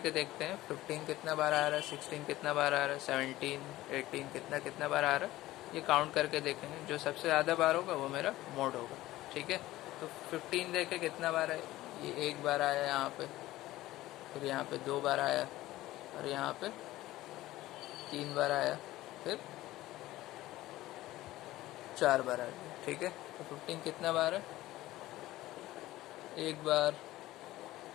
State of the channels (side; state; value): right; quieter; 16.4 dB